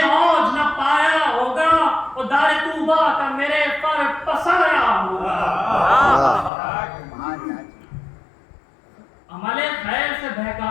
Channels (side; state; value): right; drops out; at 6.5 s